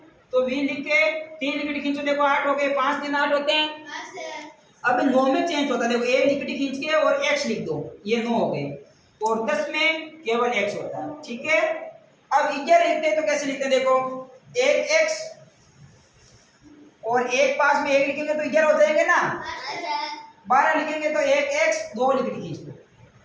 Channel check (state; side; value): identical; both; correlation 1.00